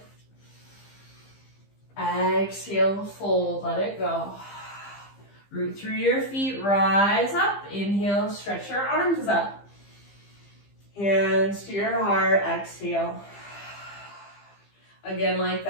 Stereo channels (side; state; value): right; late; 15 ms